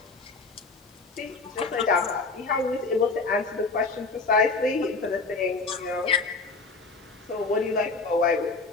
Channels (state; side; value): quieter; right; 4.0 dB